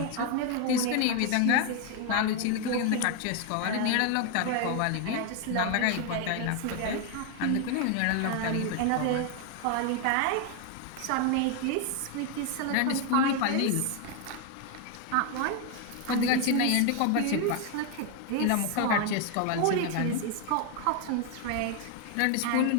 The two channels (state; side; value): different; both; correlation 0.01